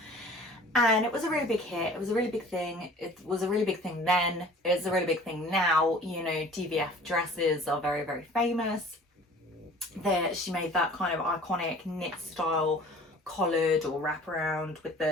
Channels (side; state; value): both; normal; correlation 0.47